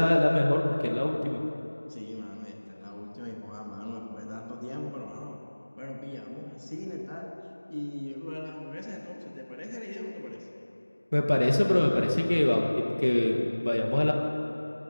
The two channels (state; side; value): inverted; both; correlation -1.00